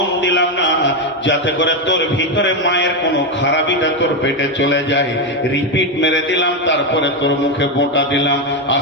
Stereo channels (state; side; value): normal; both; correlation 0.08